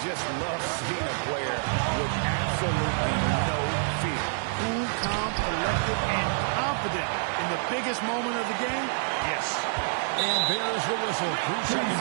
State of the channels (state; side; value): silent; left; digital silence